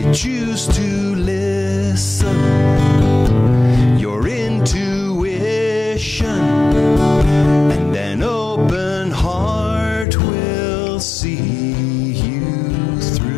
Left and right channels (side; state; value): right; drops out; at 10.1 s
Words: Choose to listen, your intuition, and an open heart will see you